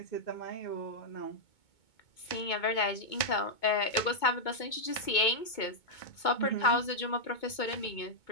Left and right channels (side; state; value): right; late; 2.2 ms